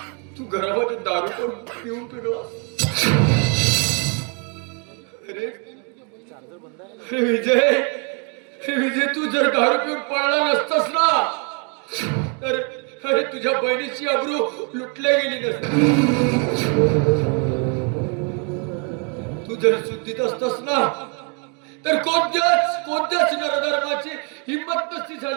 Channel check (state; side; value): quieter; left; 35.7 dB